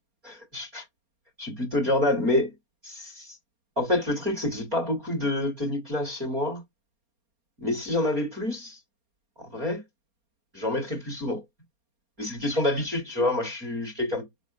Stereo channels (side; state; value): left; late; 4.3 ms